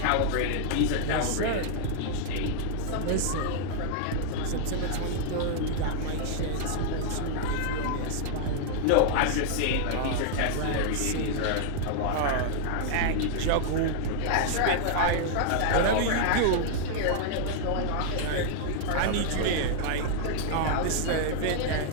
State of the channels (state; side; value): different; both; correlation -0.01